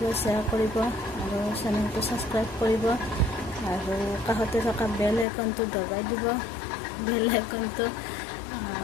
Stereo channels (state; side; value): drops out; right; at 5.2 s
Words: শ্বেয়াৰ কৰিব আৰু চেনেলটো ছাবস্ক্ৰাইব কৰিব আৰু কাষতে থকা বেল আইকনটো দবাই দিব। বেল আইকনটো